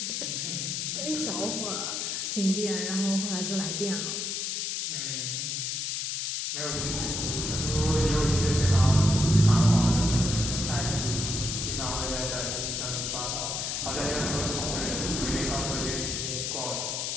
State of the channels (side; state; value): left; noise; hiss, 2 dB below the sound